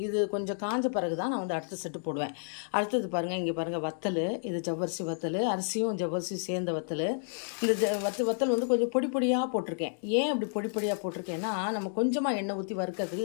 இது கொஞ்சம் காஞ்ச பிறகு தான் நான் வந்து அடுத்த செட்டு போடுவேன். அடுத்தது பாருங்கள், இங்கே பாருங்கள் வத்தல். இது ஜவ்வரிசி வத்தல், அரிசியும் ஜவ்வரிசியும் சேர்ந்த வத்தல். இந்த வத்தல் வந்து கொஞ்சம் பொடி பொடியாக போட்டிருக்கேன். ஏன் அப்படி பொடி பொடியாக போட்டிருக்கேன்னா, நம்ம கொஞ்சமாக எண்ணெய் ஊற்றி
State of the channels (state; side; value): silent; right; digital silence